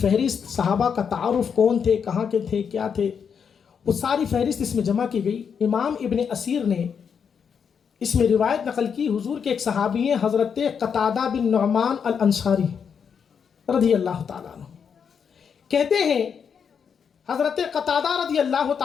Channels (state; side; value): quieter; right; 6.9 dB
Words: صحابہ کا تعارف، کون تھے، کہاں کے تھے، کیا تھے، وہ ساری فہرست اس میں جمع کی گئی۔ امام ابن اسیر نے اس میں روایت نقل کی، حضور کے ایک صحابی ہیں حضرت قتادہ بن نعمان الانصاری رضی اللہ تعالیٰ عنہ، کہتے ہیں حضرت قتادہ رضی اللہ